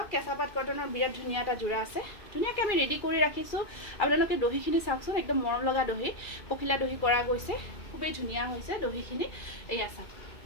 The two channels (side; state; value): right; late; 2.4 ms